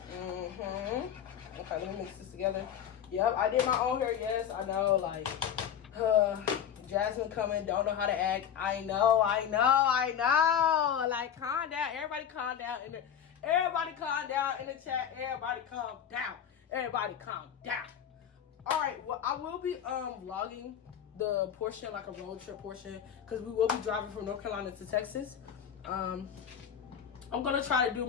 Okay, let me mix this together. Yep, I did my own hair. Yes, I know. Like, Jasmine coming, don't know how to act. I know. Like, calm down. Everybody calm down Everybody calm down in the chat. Everybody calm down. Everybody calm down. Alright, well, I will be vlogging the portion, like a road trip portion, because we will be driving from North Carolina to Texas. I'm gonna try to do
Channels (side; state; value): right; quieter; 8.9 dB